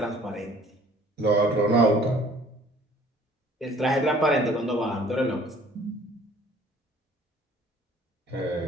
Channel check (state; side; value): normal; both; correlation 0.55